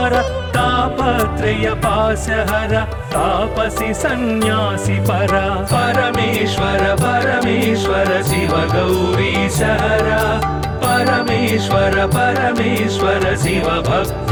तापत्रय पाशहर तापसी सन्यासी परा परमेश्वर परमेश्वर शिव गौरीश हरा परमेश्वर परमेश्वर शिव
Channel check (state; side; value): identical; both; correlation 1.00